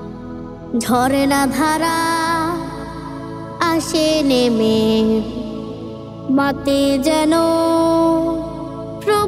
ঝরনা ধারা আসে নেমে, মাতে যেন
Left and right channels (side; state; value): both; identical; correlation 1.00